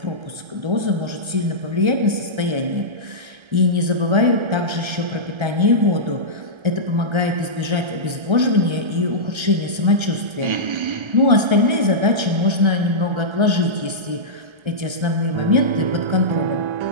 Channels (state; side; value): late; left; 1.3 ms